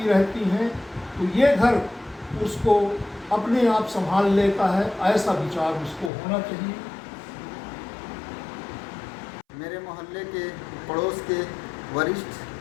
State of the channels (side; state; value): right; drops out; at 6.1 s